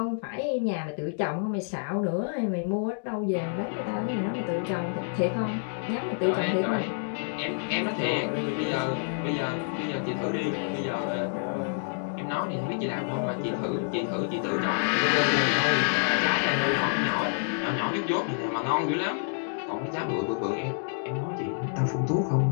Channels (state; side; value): silent; right; digital silence